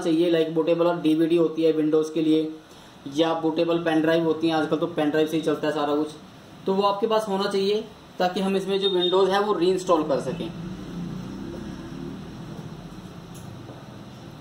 लाइक बूटेबल और डीवीडी होती है विंडोज के लिए, या बूटेबल पेन ड्राइव होती है, आजकल तो पेन ड्राइव से ही चलता है सारा कुछ, तो वो आपके पास होना चाहिए ताकि हम इसमें जो विंडोज है वो रीइंस्टॉल कर सकें।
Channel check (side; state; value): both; identical; correlation 1.00